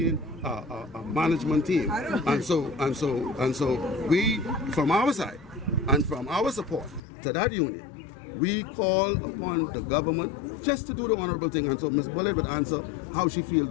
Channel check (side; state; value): right; drops out; at 7.0 s